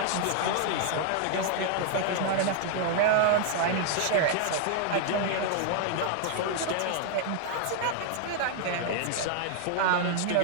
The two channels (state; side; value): different; both; correlation 0.00